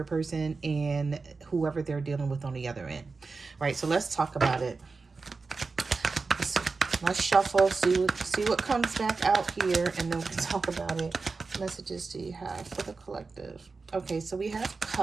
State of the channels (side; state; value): left; quieter; 4.2 dB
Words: person and whoever they're dealing with on the other end. Right, so let's talk about it. Let's shuffle, see what comes back out here, and then we can talk about it. What messages do you have for the collective? Okay, so we have